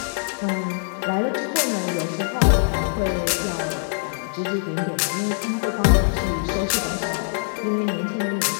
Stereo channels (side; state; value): right; silent; 63 dB below the other